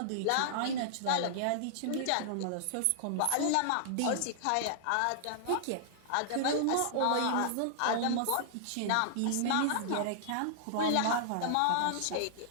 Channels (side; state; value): both; different; correlation -0.01